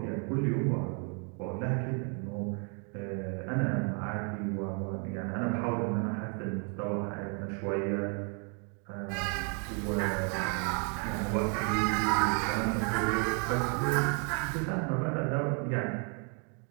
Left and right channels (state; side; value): quieter; left; 38.3 dB